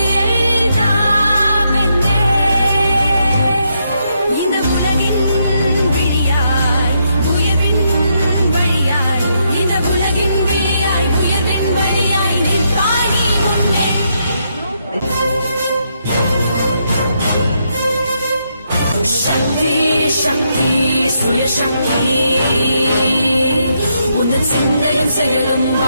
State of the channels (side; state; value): both; inverted; correlation -0.78